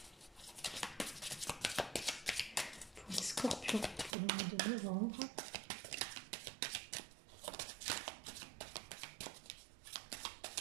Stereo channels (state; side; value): drops out; left; at 4.2 s